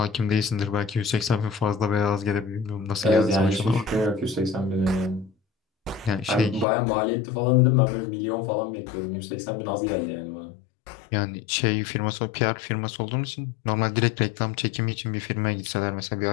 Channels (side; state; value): right; drops out; at 6.7 s